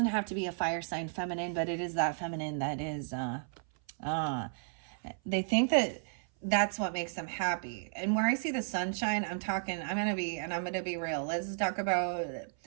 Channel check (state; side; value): silent; left; 55 dB below the other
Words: have to be a fire sign feminine, but it is that feminine that is, they think that that's what makes them happy. And where I see the sunshine, I'm gonna be real. Let's talk about